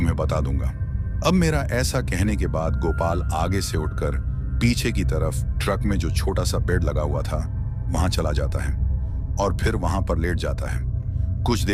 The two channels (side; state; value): both; identical; correlation 1.00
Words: बता दूंगा। अब मेरा ऐसा कहने के बाद गोपाल आगे से उठकर पीछे की तरफ ट्रक में जो छोटा सा बेड लगा हुआ था, वहां चला जाता है और फिर वहां पर लेट जाता है। कुछ